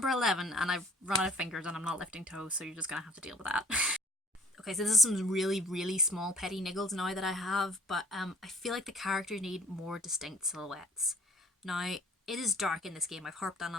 11, and I've run out of fingers and I'm not lifting toes, so you're just going to have to deal with that. Okay, so this is some really, really small petty niggles now that I have, but I feel like the characters need more distinct silhouettes. Now, it is dark in this game, I've harped on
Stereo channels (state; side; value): normal; both; correlation 0.51